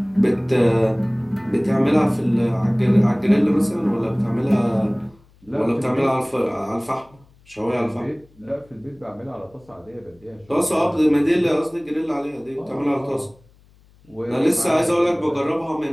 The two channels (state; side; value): noise; left; hum, 30 dB below the sound